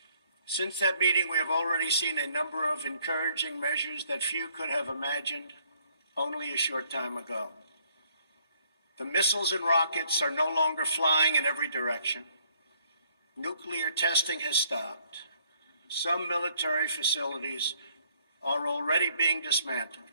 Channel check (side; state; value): both; inverted; correlation -0.66